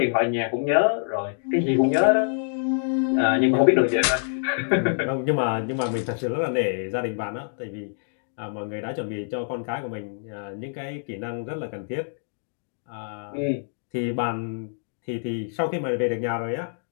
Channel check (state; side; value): silent; right; digital silence